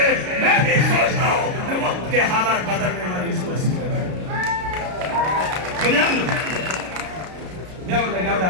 मैं भी सोचता हूँ वक्त के हालात बदलने वाली इस कुर्सी पे मैं लगा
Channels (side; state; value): left; late; 33 ms